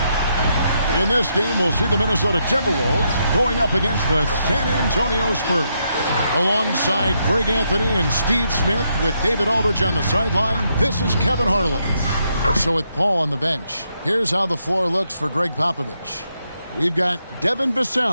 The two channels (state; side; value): inverted; both; correlation -0.79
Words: In this game, we'll see the Minnesota Timberwolves going up against the San Antonio Spurs. Alongside Greg Anthony and Steve Smith with David Aldridge on the sideline, this is Kevin Harlan. So with Paul on the bench, here's how the floor looks for Greg Popovich. We've got Devin